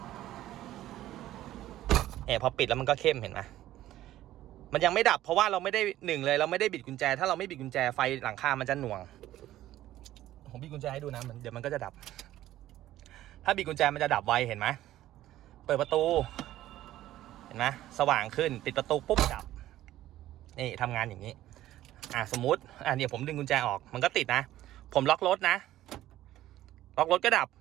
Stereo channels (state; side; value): quieter; left; 14.1 dB